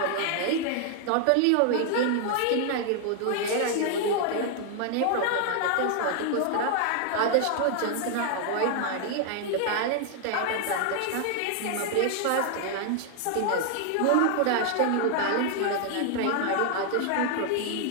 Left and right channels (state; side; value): different; both; correlation 0.00